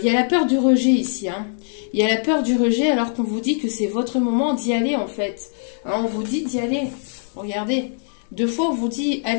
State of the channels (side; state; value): right; silent; digital silence